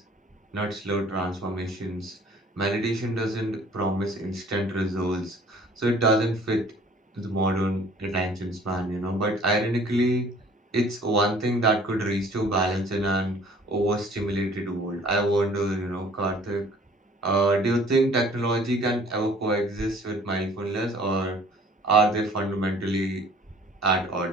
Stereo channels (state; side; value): normal; both; correlation 0.53